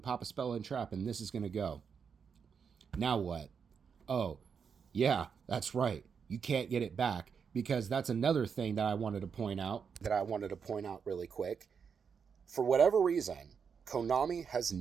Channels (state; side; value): quieter; left; 6.4 dB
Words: a spell and trap and this is going to go. Now what? Oh, yeah, that's right. You can't get it back, because that's another thing that I wanted to point out. Really quick. For whatever reason, Konami has